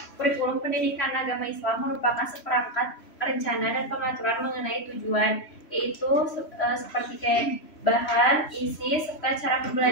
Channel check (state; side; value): late; right; 3.1 ms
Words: Kurikulum pendidikan agama Islam merupakan seperangkat rencana dan pengaturan mengenai tujuan, yaitu seperti kayak bahan, isi, serta cara